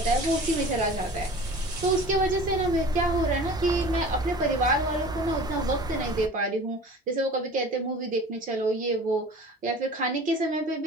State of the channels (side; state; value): both; normal; correlation 0.41